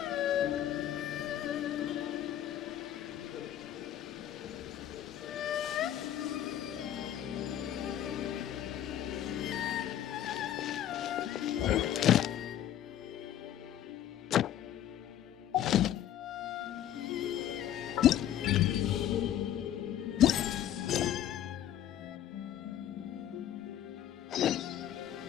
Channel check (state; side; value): quieter; right; 11.2 dB